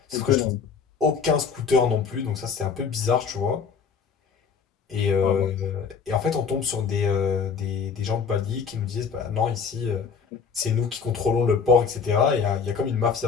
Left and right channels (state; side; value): quieter; right; 6.0 dB